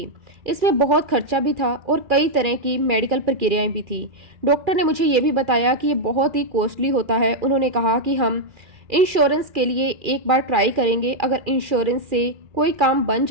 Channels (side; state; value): left; late; 2.4 ms